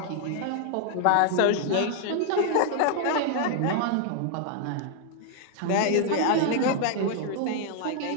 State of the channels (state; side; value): different; both; correlation 0.00